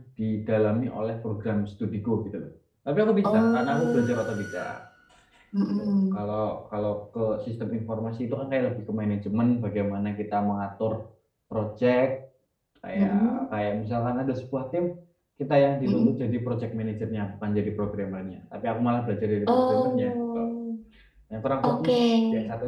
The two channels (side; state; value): both; identical; correlation 1.00